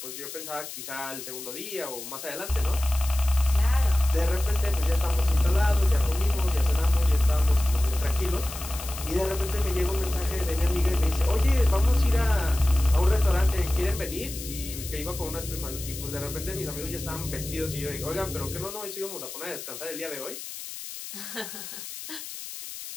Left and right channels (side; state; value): left; noise; hiss, 10 dB below the sound